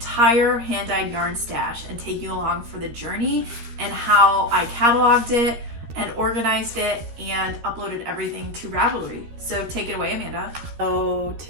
hand-dyed yarn stash and take you along for the journey and how I cataloged it and organized it and uploaded everything to Ravelry. So take it away, Amanda. So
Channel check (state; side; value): late; left; 13 ms